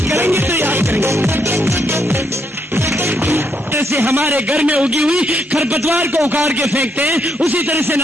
करेंगे तो याद करेंगे। जैसे हमारे घर में उगी हुई खरपतवार को उखाड़ के फेंकते हैं, उसी तरह से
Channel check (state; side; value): normal; both; correlation 0.76